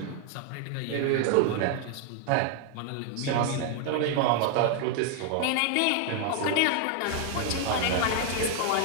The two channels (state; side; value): different; both; correlation 0.00